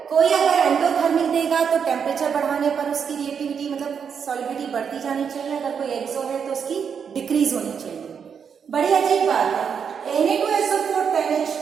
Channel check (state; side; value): quieter; left; 7.0 dB